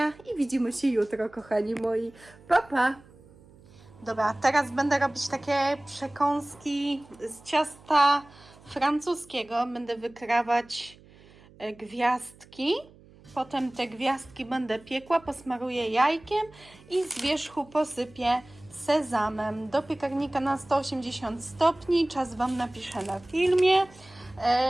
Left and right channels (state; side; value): noise; right; hum, 25 dB below the sound